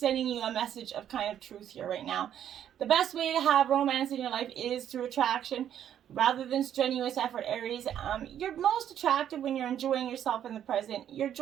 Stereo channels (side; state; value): left; quieter; 10.1 dB